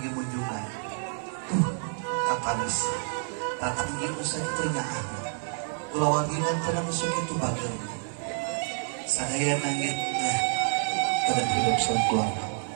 munjungan. Katanis. Tatang ieu sakitu nyaah. Kula wargi kan teu musuk itu bageun. Sadaya nangit pada hidup keluarga.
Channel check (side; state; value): left; silent; 57 dB below the other